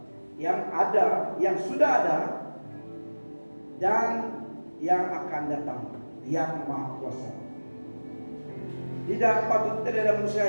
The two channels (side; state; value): both; inverted; correlation -1.00